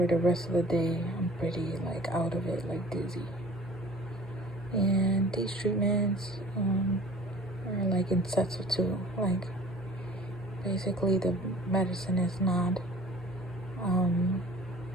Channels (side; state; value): both; normal; correlation 0.48